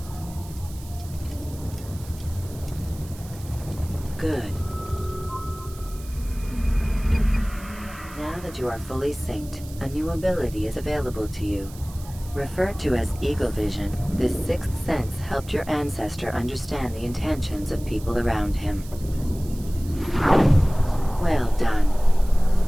Good. Now that you are fully synced, a new ability is available to you. Referred to as Eagle Vision, this sixth sense helped your ancestor understand the intentions of people around him. Well done.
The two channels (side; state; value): right; noise; hiss, 19 dB below the sound